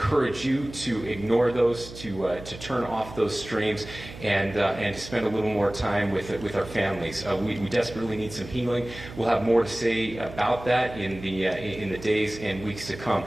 you to ignore those, to turn off those streams, and spend a little more time with our families. We desperately need some healing. We'll have more to say about that in the days and weeks to come.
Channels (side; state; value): right; noise; hum, 14 dB below the sound